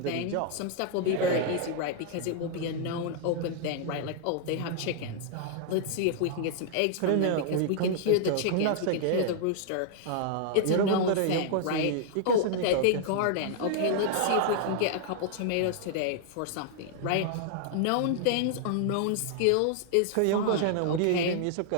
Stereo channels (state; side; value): different; both; correlation -0.01